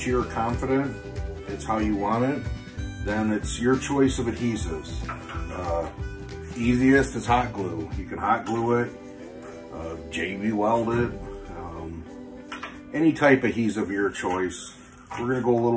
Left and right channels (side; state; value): both; identical; correlation 1.00